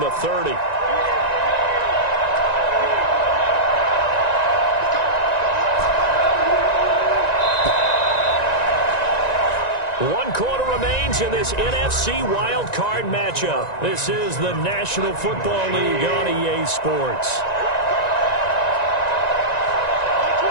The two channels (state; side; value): late; right; 1.9 ms